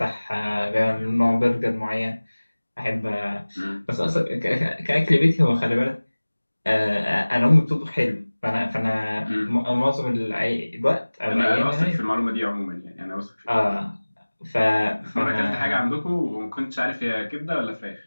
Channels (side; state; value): both; inverted; correlation -1.00